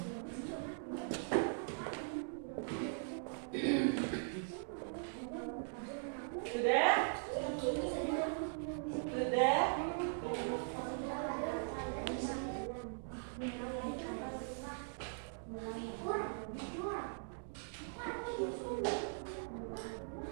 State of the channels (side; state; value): left; silent; digital silence